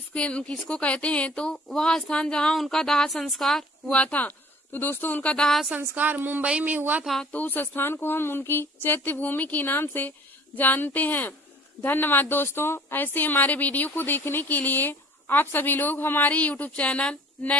कहते हैं? तो वह स्थान जहाँ उनका दाह संस्कार हुआ था। तो दोस्तों उनका दाह संस्कार मुंबई में हुआ था, तो उस स्थान को हम उनकी चैत्य भूमि के नाम से जानते हैं। धन्यवाद दोस्तों। ऐसे हमारे वीडियो को देखने के लिए आप सभी लोग हमारे YouTube channel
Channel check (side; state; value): both; normal; correlation 0.51